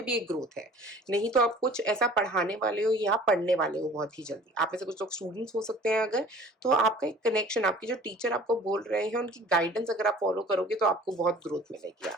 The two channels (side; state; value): both; normal; correlation 0.48